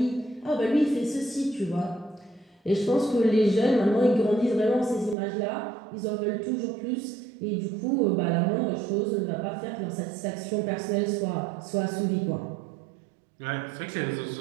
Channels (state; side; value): drops out; left; at 5.2 s